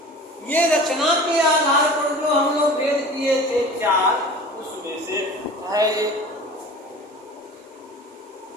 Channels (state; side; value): normal; both; correlation 0.40